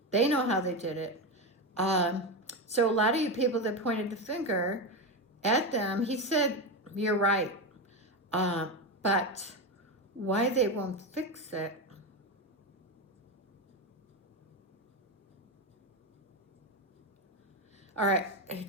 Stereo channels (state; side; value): normal; both; correlation 0.15